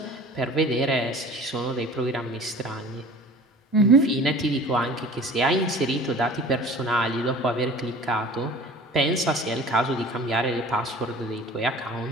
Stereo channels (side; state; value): both; normal; correlation 0.43